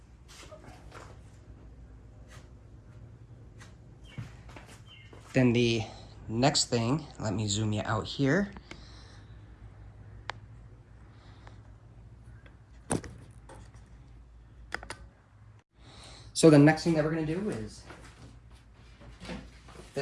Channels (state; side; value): identical; both; correlation 1.00